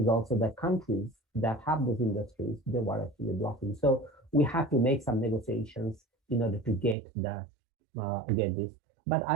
also the countries that have those industries, they were actually blocking. So we have to make some negotiations in order to get this. But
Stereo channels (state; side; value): drops out; left; at 7.0 s